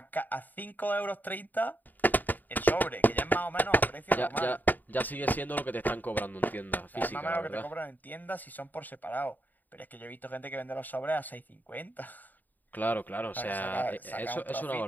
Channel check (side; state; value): right; late; 0.086 ms